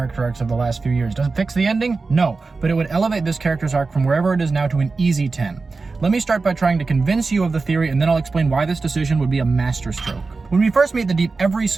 arcs of the last few years. Does it fix the ending? No, but it would elevate this character's arc from wherever it is now to an easy 10. Let me start by trying to convince you of the theory, and then I'll explain why this decision would be a masterstroke. When we first meet the Deep, every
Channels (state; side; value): quieter; left; 4.0 dB